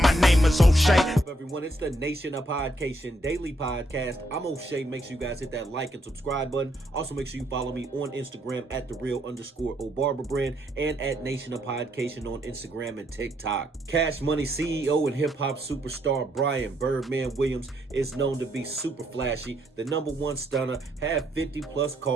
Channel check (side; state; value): both; normal; correlation 0.74